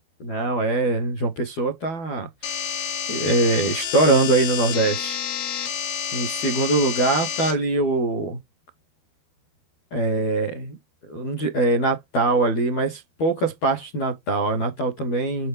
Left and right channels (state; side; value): late; right; 12 ms